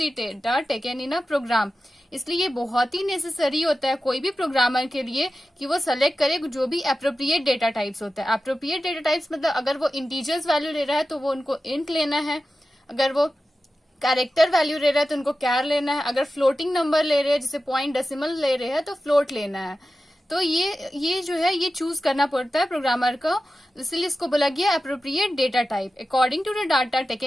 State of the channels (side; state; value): both; normal; correlation 0.93